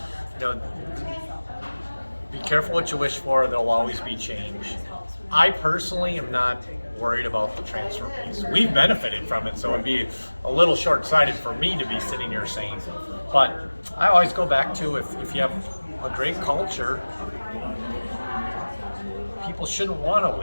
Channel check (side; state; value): both; inverted; correlation -1.00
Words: be careful what you wish for, there'll always be change. I personally am not worried about the transfer piece. We've benefited from it, so it'd be a little short-sighted for me to be sitting here saying. But I always go back to if you have a great culture, people shouldn't want to